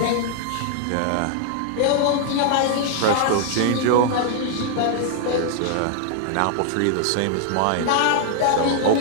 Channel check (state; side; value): different; both; correlation 0.00